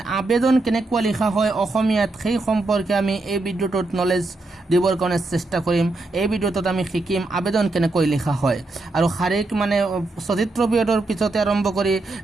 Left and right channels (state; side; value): quieter; left; 3.1 dB